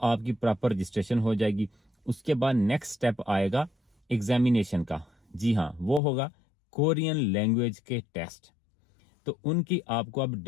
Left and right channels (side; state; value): right; drops out; at 6.0 s